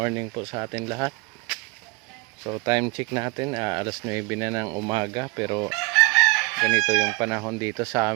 po sa atin lahat. So time check natin, alas 9 na ng umaga, pero ganito yung panahon dito sa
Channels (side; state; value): left; quieter; 25.8 dB